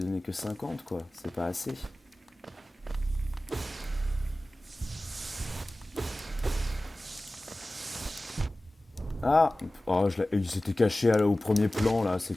que 50, quoi. C'est pas assez. Ah oh, il s'était caché au premier plan, là. C'est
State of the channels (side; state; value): both; normal; correlation 0.97